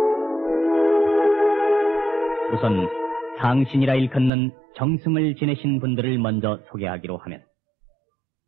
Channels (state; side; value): drops out; left; at 4.3 s